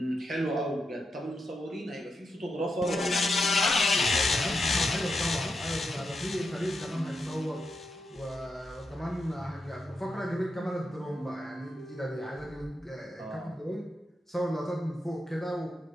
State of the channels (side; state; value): both; normal; correlation 0.85